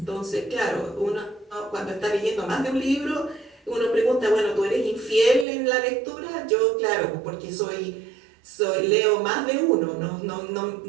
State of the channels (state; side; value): drops out; left; at 5.5 s